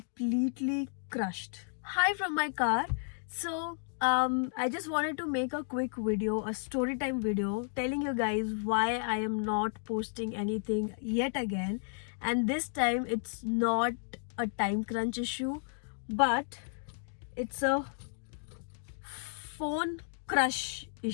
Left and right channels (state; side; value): silent; right; digital silence